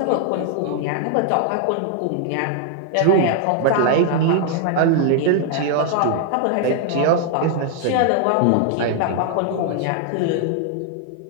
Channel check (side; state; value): both; different; correlation 0.00